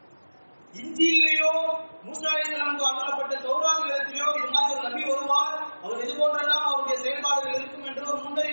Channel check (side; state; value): both; inverted; correlation -1.00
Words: இஞ்சியிலேயோ மூசா அலைஹிஸ்ஸலாமுக்கு அருளப்பட்ட தௌராத் வேதத்திலேயோ இது மாதிரி ஒரு நபி வருவார், அவர் இது போன்றெல்லாம் அவருடைய செயல்பாடுகள் இருக்கும் என்று ஒரு